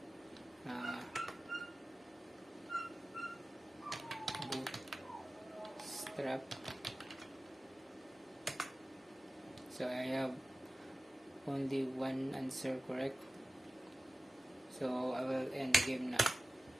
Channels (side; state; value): both; normal; correlation 0.96